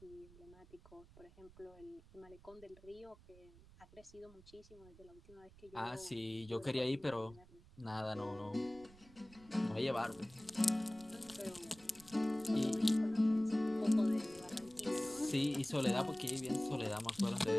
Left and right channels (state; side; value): noise; right; rumble, 22 dB below the sound